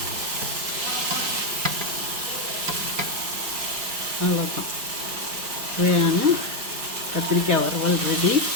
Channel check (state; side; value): late; left; 4.5 ms